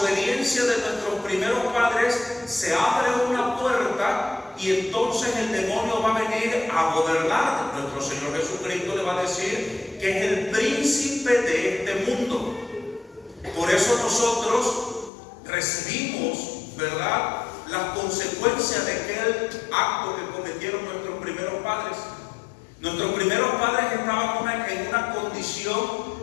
de nuestros primeros padres se abre una puerta y entonces el demonio va a venir a gobernar. Nuestro Señor Jesucristo le va a decir que es el príncipe de este mundo. Por eso nosotros recibimos, ¿verdad?, las consecuencias de aquel acto que cometieron nuestros primeros padres. Nuestros primeros padres estaban en una condición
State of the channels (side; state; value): right; drops out; at 15.1 s